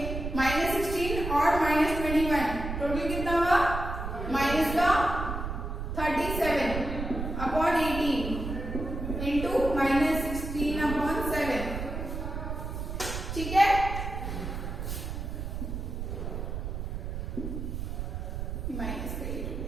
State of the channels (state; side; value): noise; right; rumble, 5 dB below the sound